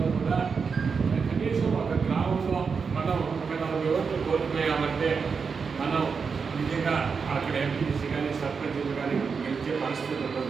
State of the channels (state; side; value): quieter; left; 5.5 dB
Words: కూడా కనీసం ఒక గ్రామంలో మనం ఒక 40 ఓట్లు కోల్పోయామంటే మనం నిజంగా అక్కడ ఎంపీసీ కానీ సర్పంచ్లు కానీ గెలిచే పరిస్థితి